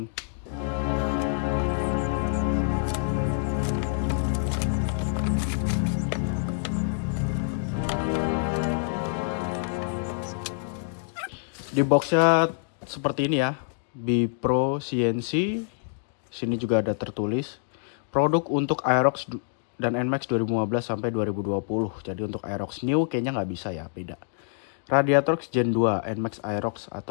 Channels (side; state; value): right; silent; digital silence